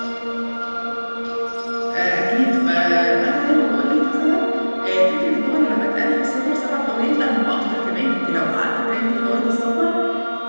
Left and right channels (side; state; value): both; inverted; correlation -1.00